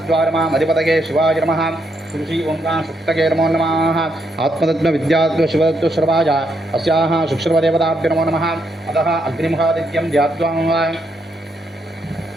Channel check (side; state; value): both; normal; correlation 0.77